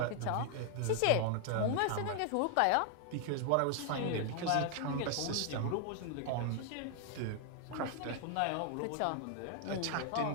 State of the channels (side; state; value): both; different; correlation 0.00